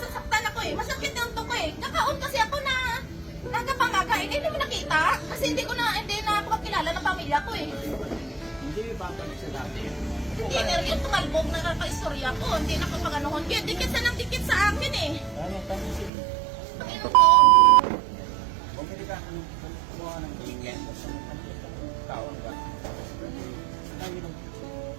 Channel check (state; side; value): drops out; left; at 16.1 s